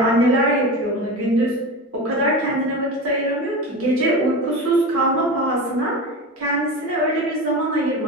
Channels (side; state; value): both; normal; correlation 0.26